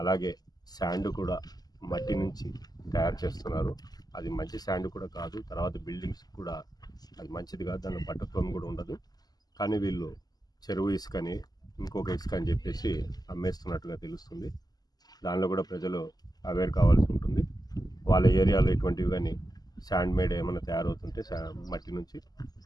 అలాగే శాండ్ కూడా మట్టి నుంచి తయారు చేస్తున్నారు. అది మంచి శాండ్ కూడా కాదు. తర్వాత బిల్డింగ్స్ కూడా అది మంచిది కాదు, దానిలో పట్టత్వం కూడా ఉండదు. కానీ వీళ్ళు చెరువు ఇసుకని ఇంకొక ఇసుక అని చెప్పేసి అమ్మేస్తున్నట్టుగా తెలుస్తుంది. దానిలో కూడా ప్రజలు అవేర్ కావాల్సి ఉంటుంది. వాళ్ళ ఏరియాలో ఇటువంటివి కానీ శాండ్ మేడ్ ఏమైనా తయారవుతుంటే మట్టి నుంచి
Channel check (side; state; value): right; late; 0.19 ms